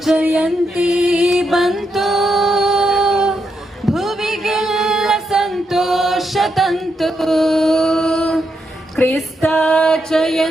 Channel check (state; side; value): normal; both; correlation 0.82